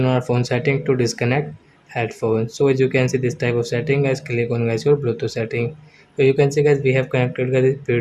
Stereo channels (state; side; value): identical; both; correlation 1.00